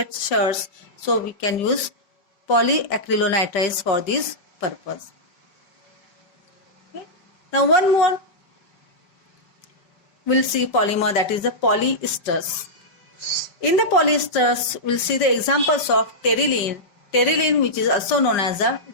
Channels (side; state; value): right; late; 5.0 ms